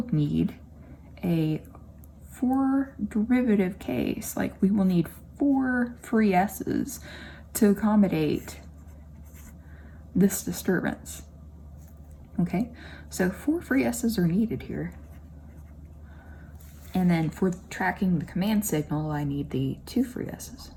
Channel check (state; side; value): identical; both; correlation 1.00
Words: need a 4 derivative case. Like we will need 4 free s's to accommodate this disturbance. Okay, so 4 free s's are needed here. And then for tracking the command signal, I need the 2 free s's.